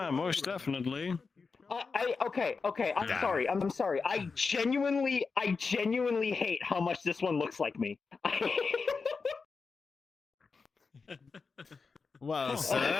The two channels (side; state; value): right; quieter; 4.8 dB